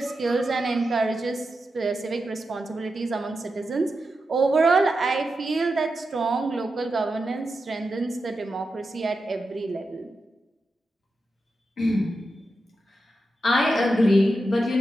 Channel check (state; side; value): normal; both; correlation 0.89